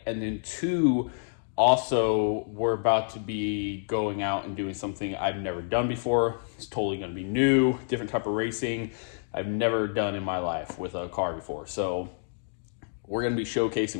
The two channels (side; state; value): right; silent; digital silence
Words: and then two, also we're about to be going out and doing something I've never done before. It's totally going to be new, different type of racing I've never done in my life with a car before. So we're going to be